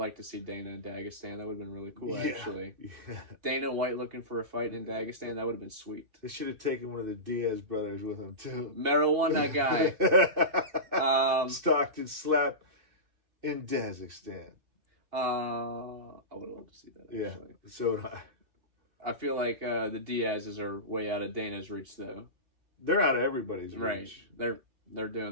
to see Dana in Dagestan. That would have been really cool, actually. Yeah. Dana White looking for a fight in Dagestan. That would have been sweet. They should have taken one of the Diaz brothers with them, too. Marijuana guy. Stockton slap in Dagestan. I would have loved to see that, actually. Yeah, so would I. I feel like the Diaz's are way out of Dana's reach, though. They're out of everybody's reach. Right. They're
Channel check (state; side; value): late; left; 2.6 ms